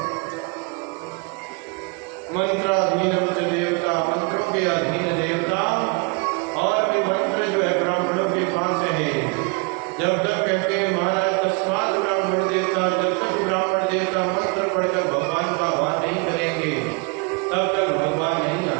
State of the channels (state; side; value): quieter; left; 31.6 dB